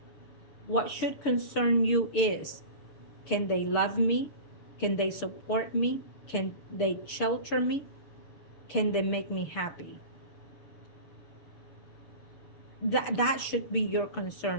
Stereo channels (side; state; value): right; late; 6.7 ms